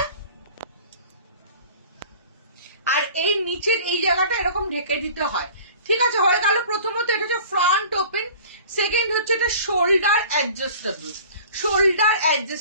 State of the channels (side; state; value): both; inverted; correlation -0.45